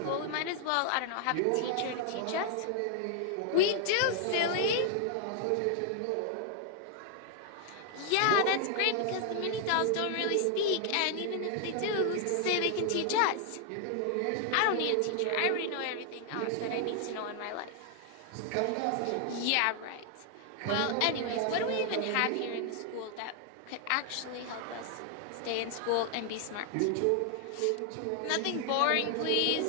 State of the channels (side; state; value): both; different; correlation 0.00